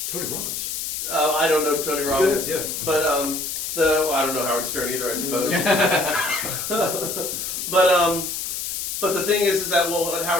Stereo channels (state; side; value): noise; left; hiss, 4 dB below the sound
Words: Tony Robbins. I don't know Tony Robbins, Yeah. but I don't know Howard Stern either, I suppose. But the thing is that what